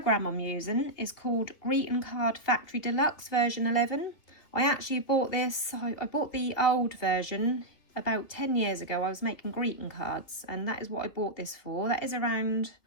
I'm using is called Greeting Card Factory Deluxe version 11. I actually bought this, I bought the old version about 10 years ago. I was making greeting cards and that is what I bought this for. That is around,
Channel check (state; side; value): late; right; 3.1 ms